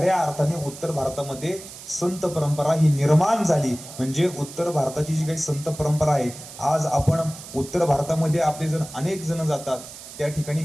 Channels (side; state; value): right; noise; hiss, 15 dB below the sound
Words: अर्थाने उत्तर भारतामध्ये संत परंपरा ही निर्माण झाली. म्हणजे उत्तर भारताची जी काही संत परंपरा आहे, आज आपण उत्तर भारतामध्ये आपले जण अनेक जण जातात, त्या ठिकाणी